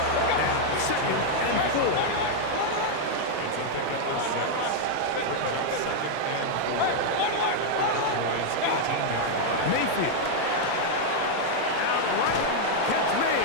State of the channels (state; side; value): different; both; correlation 0.00